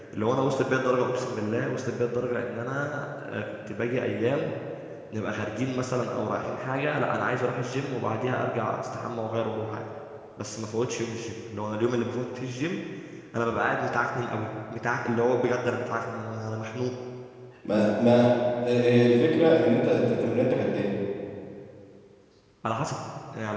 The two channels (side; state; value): both; identical; correlation 1.00